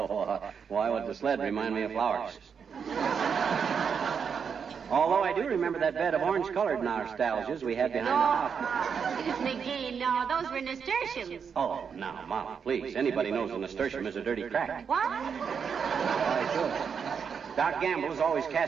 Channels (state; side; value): quieter; left; 6.6 dB